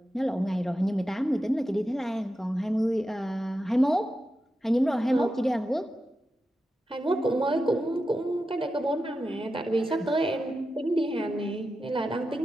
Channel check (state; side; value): normal; both; correlation 0.90